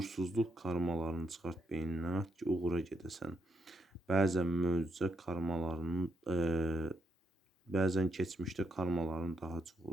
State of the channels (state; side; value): normal; both; correlation 0.78